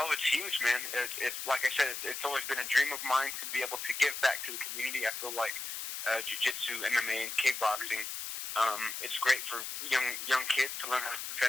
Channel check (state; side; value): noise; left; hiss, 6 dB below the sound